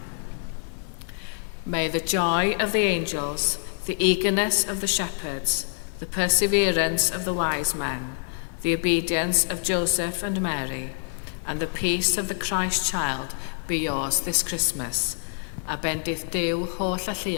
May the joy of the angels, the eagerness of the shepherds, the perseverance of the wise men, the obedience of Joseph and Mary, and the peace of the Christ child be yours this Christmas. A bendith Duw holl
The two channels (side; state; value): right; silent; digital silence